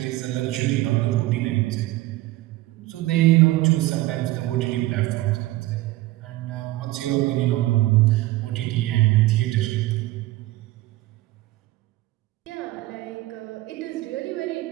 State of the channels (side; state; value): left; quieter; 17.6 dB